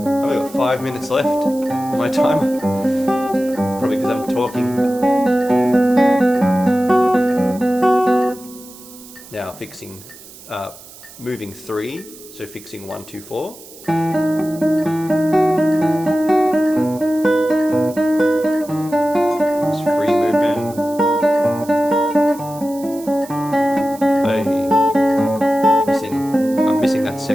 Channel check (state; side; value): noise; right; hiss, 19 dB below the sound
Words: I've only got 5 minutes left on my timer. Probably because I'm talking. Now fixing, moving 3, so fixing 1, 2, 4. It's free movement. I'm missing that